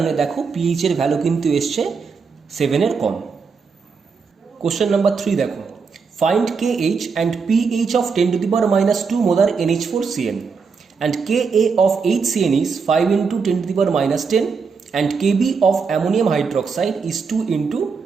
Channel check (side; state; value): left; quieter; 5.3 dB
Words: দেখো পিএইচ এর ভ্যালু কিন্তু এসছে 7 এর কম। কোশ্চেন নাম্বার 3 দেখো, find KH and PH of 10⁻² molar NH4CN and Ka of HCN is 5 × 10⁻10 and Kb of ammonium hydroxide is 2 ×